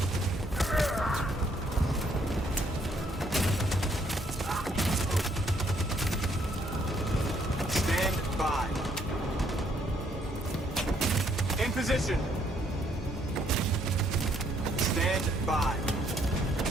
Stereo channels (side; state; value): both; normal; correlation 0.68